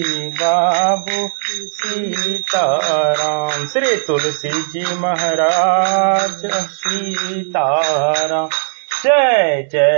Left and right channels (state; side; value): silent; left; digital silence